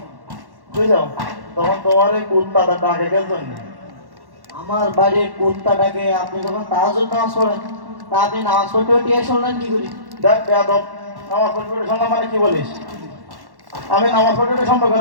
বুঝছো, তখন তোমার এই কুত্তাটা ডাকে কেন জন্য? আমার বাড়ির কুত্তাটাকে আপনি যখন তাহাজ্জুদ নামাজ পড়েন, তা আপনি নামাজ পড়তে পড়তে শুনলেন কি করি? দেখ বেয়াদব, নামাজ পড়তে পড়তে শুনলাম মানে কি বলিস? আমি নামাজ পড়তে পড়তে শুনবো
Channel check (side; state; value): left; late; 1.1 ms